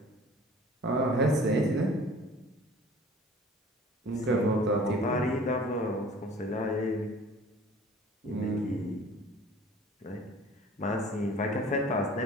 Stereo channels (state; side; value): normal; both; correlation 0.47